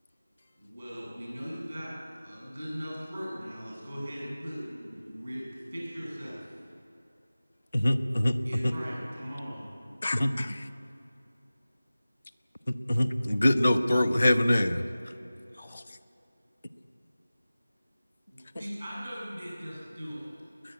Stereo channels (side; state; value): both; inverted; correlation -0.97